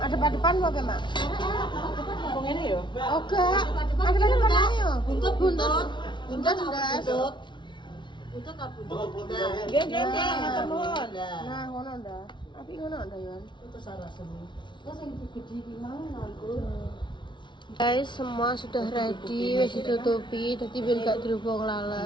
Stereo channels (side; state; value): right; late; 0.23 ms